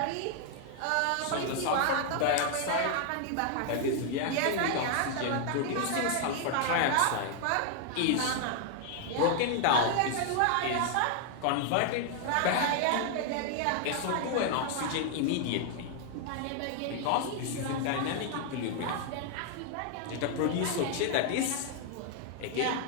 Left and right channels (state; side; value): different; both; correlation 0.00